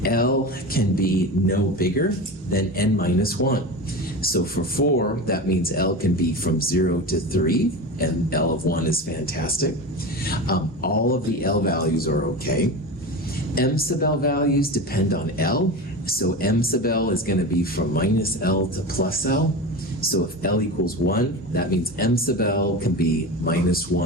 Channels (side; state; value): both; normal; correlation 0.26